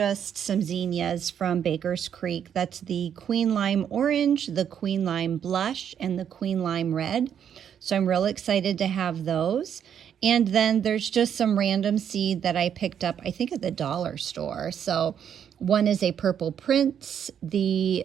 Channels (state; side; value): quieter; left; 8.7 dB